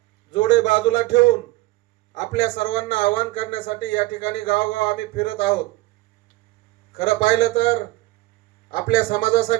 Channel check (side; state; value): left; quieter; 19.2 dB